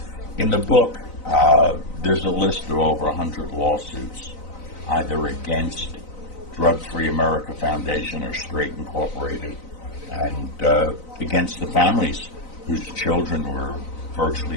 In the book, there's a list of over 100 lawsuits, either against Drug Free America Foundation or Straight Incorporated, and against the families whose children were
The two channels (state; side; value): late; right; 4.0 ms